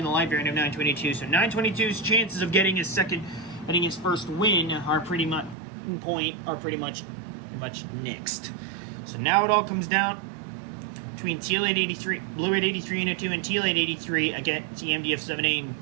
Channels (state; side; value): drops out; left; at 5.6 s